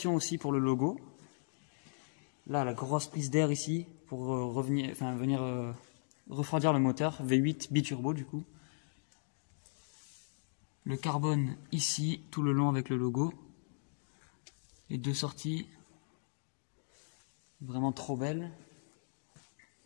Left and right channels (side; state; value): right; silent; digital silence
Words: aussi pour le logo. Là, la grosse prise d'air ici pour venir refroidir le moteur. V8 biturbo du coup. Le carbone ici, tout le long avec le logo. Les 2 sorties. Vraiment trop belles.